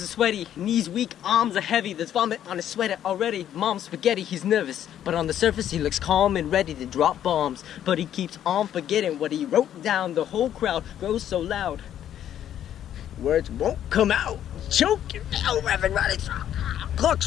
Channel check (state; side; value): quieter; right; 10.7 dB